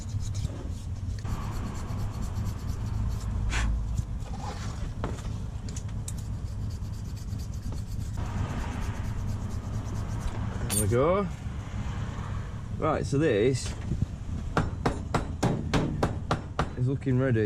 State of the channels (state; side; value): identical; both; correlation 1.00